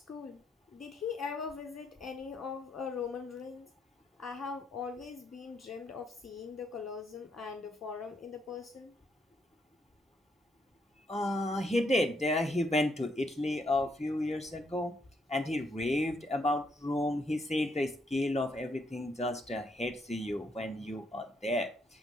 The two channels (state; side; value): normal; both; correlation 0.75